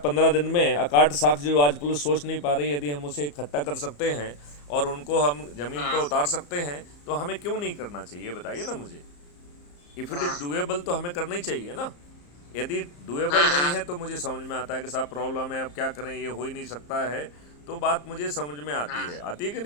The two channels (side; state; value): right; late; 34 ms